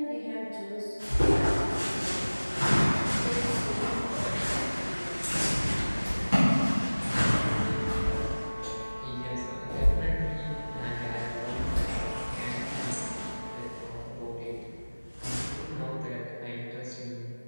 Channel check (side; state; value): both; inverted; correlation -1.00